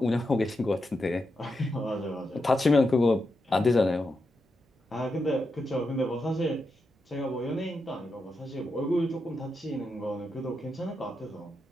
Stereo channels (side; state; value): both; normal; correlation 0.86